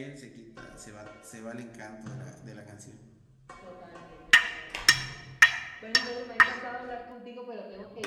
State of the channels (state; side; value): identical; both; correlation 1.00